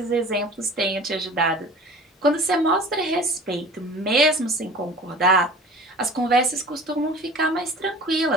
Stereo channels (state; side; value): normal; both; correlation 0.42